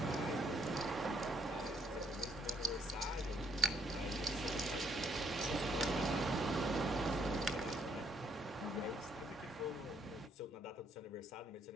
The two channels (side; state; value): both; normal; correlation 0.67